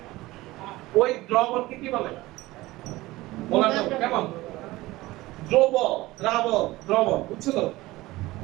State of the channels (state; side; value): quieter; left; 18.9 dB